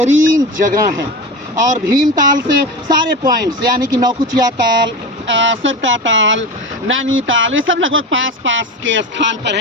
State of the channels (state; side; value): normal; both; correlation 0.25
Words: जगह है। और भीमताल से सारे पॉइंट्स यानी कि नौकुचिया ताल, सरता ताल, नैनीताल, ये सब लगभग पास पास के स्थान पर